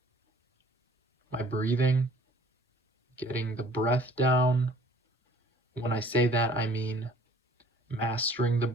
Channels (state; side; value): normal; both; correlation 0.53